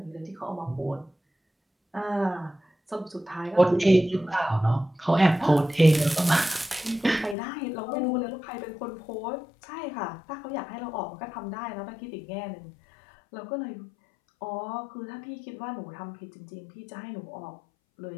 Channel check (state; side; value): drops out; right; at 7.4 s